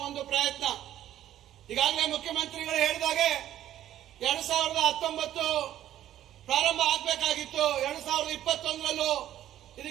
ಒಂದು ಪ್ರಯತ್ನ. ಈಗಾಗಲೇ ಮುಖ್ಯಮಂತ್ರಿಗಳು ಹೇಳಿದಾಗೆ 2019 ಪ್ರಾರಂಭ ಆಗಬೇಕಾಗಿತ್ತು. 2021ರಲ್ಲೂ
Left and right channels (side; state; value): left; quieter; 12.2 dB